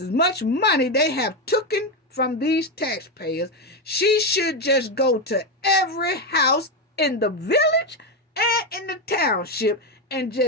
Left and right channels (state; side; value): normal; both; correlation 0.10